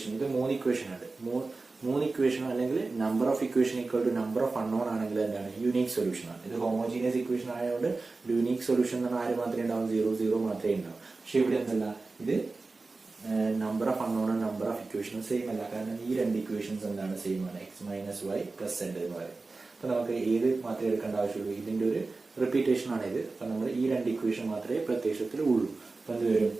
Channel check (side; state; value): left; quieter; 3.6 dB